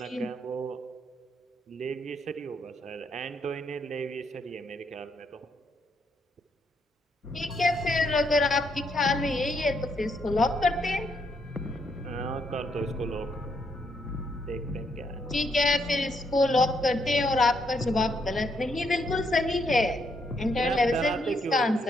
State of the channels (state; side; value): normal; both; correlation 0.75